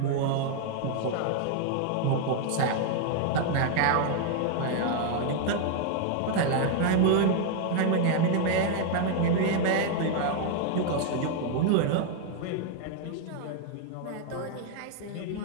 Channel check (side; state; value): both; different; correlation 0.00